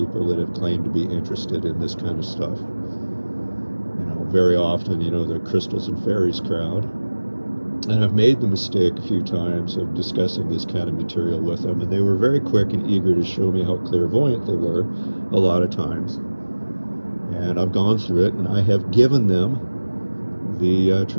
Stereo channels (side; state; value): both; inverted; correlation -1.00